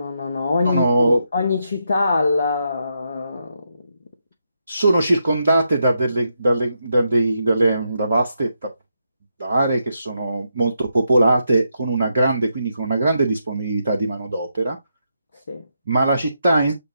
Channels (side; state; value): both; inverted; correlation -0.82